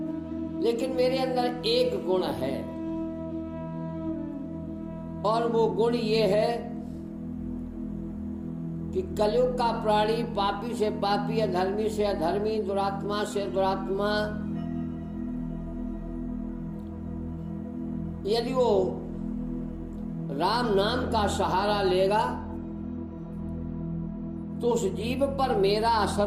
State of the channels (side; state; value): both; identical; correlation 1.00